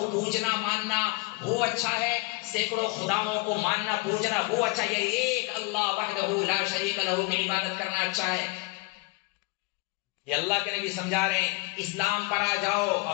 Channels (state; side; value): quieter; right; 25.6 dB